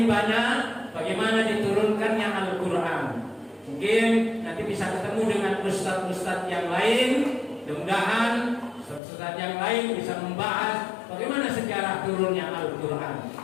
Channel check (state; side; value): drops out; right; at 9.0 s